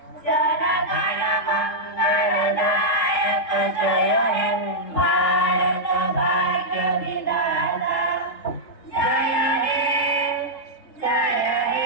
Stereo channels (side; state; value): right; late; 3.7 ms